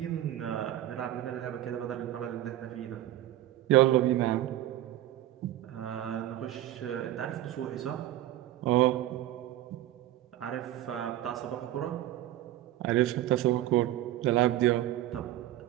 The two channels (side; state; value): left; quieter; 13.7 dB